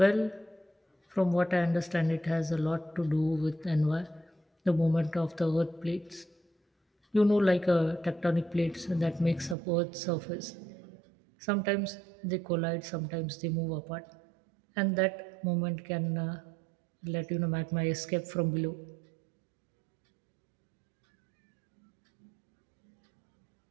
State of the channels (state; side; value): drops out; left; at 9.6 s